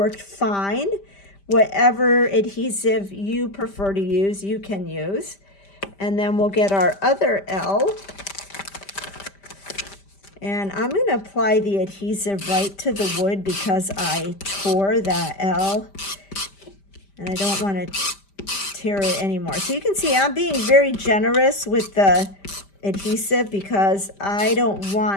fine. Whatever adhesive you prefer to use, you can use. And then we'll get our other L. And I'm going to apply the adhesive right to the wood because I tore that L. And I don't want to tear it anymore. So you can see I'm being very generous with the adhesive because I don't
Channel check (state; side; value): late; right; 5.1 ms